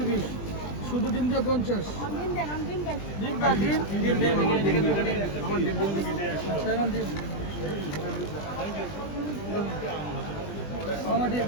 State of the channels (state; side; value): late; right; 20 ms